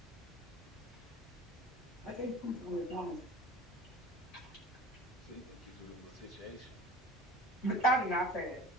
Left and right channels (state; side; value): normal; both; correlation 0.40